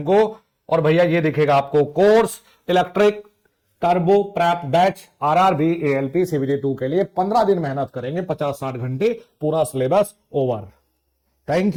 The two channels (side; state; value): both; identical; correlation 1.00